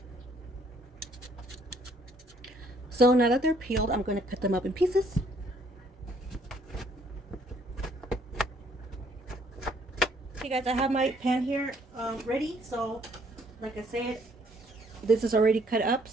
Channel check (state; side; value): normal; both; correlation 0.64